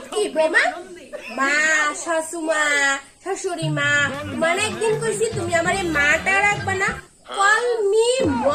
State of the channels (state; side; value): identical; both; correlation 1.00